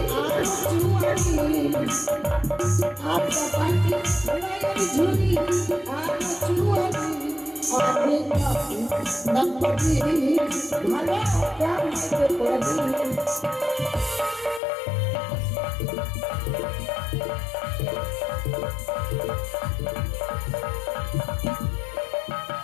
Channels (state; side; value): drops out; right; at 14.6 s